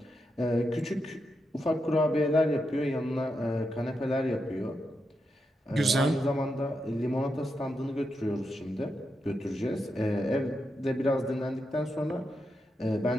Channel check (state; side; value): normal; both; correlation 0.85